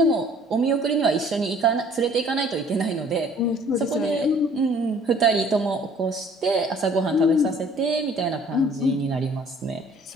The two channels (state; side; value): normal; both; correlation 0.55